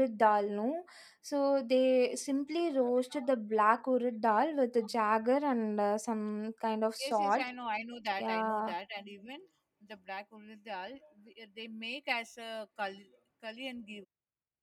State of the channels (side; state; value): both; identical; correlation 1.00